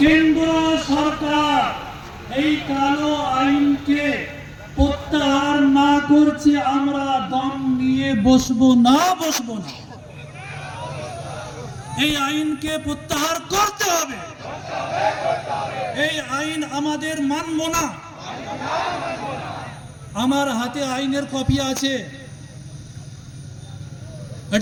কেন্দ্র সরকার এই কালো আইনকে প্রত্যাহার না করছে, আমরা দম নিয়ে বসবো না। এই আইনকে প্রত্যাহার করতে হবে। এই আইন আমাদের মানব না। আমার হাতে আইনের কপি আছে।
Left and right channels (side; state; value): both; identical; correlation 1.00